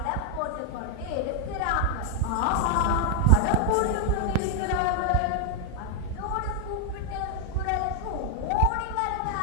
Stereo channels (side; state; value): both; different; correlation 0.00